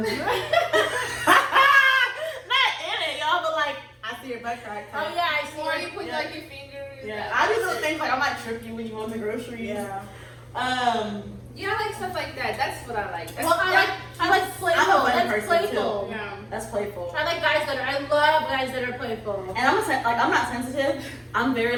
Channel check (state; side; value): identical; both; correlation 1.00